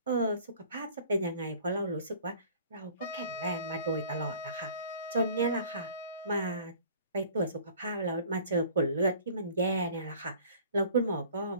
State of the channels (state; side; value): inverted; both; correlation -0.48